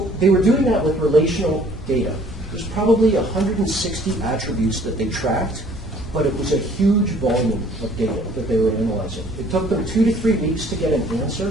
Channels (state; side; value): normal; both; correlation 0.56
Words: they were doing that with relational data. There's probably 160 attributes that they tracked, but it was a huge volume of data that they were analyzing. It took them 2 to 3 weeks to get an